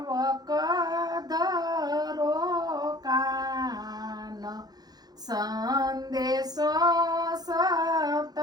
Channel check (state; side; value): late; left; 0.19 ms